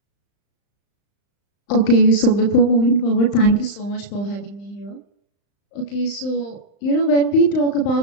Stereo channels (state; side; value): late; right; 35 ms